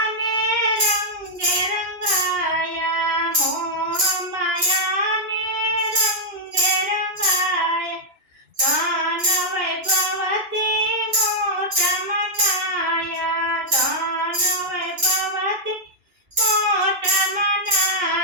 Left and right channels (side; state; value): left; late; 2.5 ms